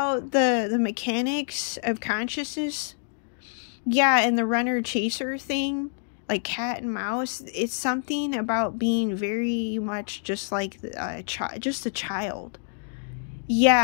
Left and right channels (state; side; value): silent; right; digital silence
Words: the mechanics of consciousness. Yeah, and the runner-chaser thing, like cat and mouse. It's something about being very much just like just a child.